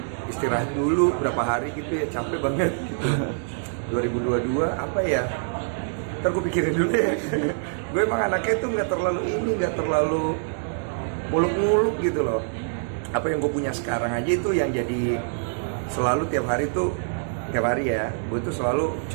istirahat dulu berapa hari gitu ya, capek banget gitu. 2022 apa ya, ntar gue pikirin dulu ya. Gue emang anaknya tuh nggak terlalu muluk-muluk gitu loh. Apa yang gue punya sekarang aja itu yang jadi selalu tiap hari ya, gue tuh selalu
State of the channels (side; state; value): left; silent; digital silence